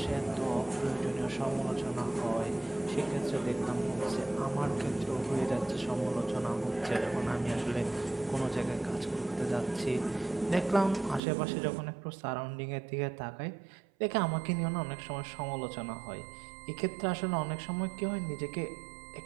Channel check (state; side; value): drops out; left; at 11.2 s